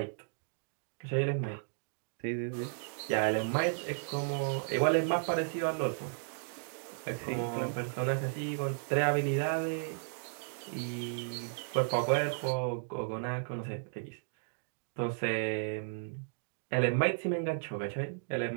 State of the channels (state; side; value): silent; left; digital silence